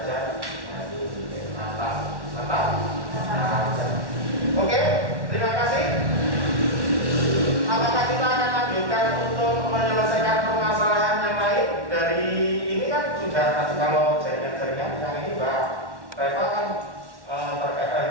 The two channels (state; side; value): late; left; 1.1 ms